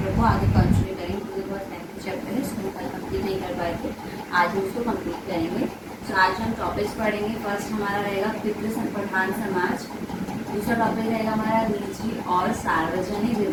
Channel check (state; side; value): identical; both; correlation 1.00